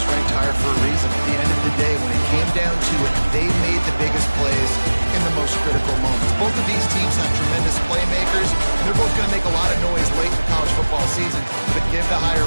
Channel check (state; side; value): inverted; both; correlation -1.00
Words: ranked higher for a reason. At the end of the day, when it came down to it, they made the biggest plays in the most critical moments. Both of these teams have tremendous playmakers, and they're both going to make a lot of noise late in the college football season. But give the